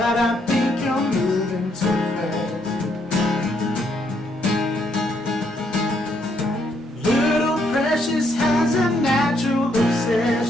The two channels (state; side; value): normal; both; correlation 0.73